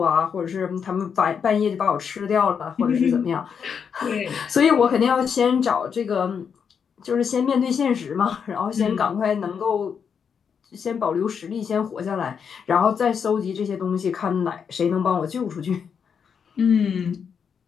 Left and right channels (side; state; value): right; quieter; 6.9 dB